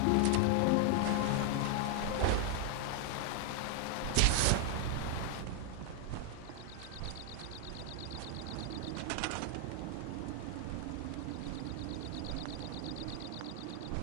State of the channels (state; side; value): different; both; correlation 0.00